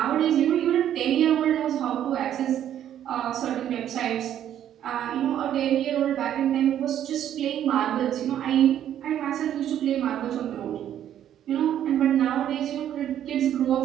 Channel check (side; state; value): left; quieter; 10.7 dB